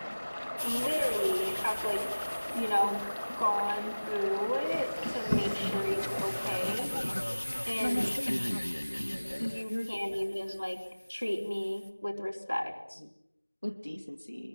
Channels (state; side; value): inverted; both; correlation -1.00